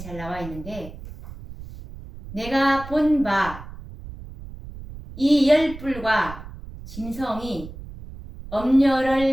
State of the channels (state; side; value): noise; right; rumble, 14 dB below the sound